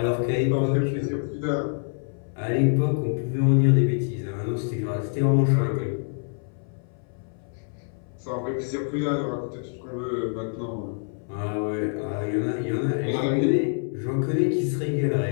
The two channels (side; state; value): right; silent; 61 dB below the other